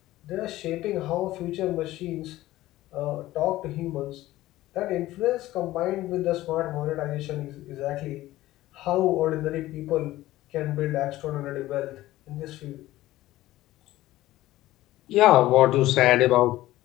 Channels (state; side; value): quieter; right; 16.2 dB